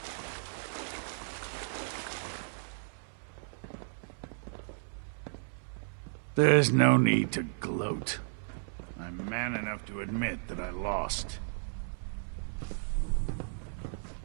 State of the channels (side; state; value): left; silent; 55 dB below the other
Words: There's no need to gloat. I'm man enough to admit that I lost.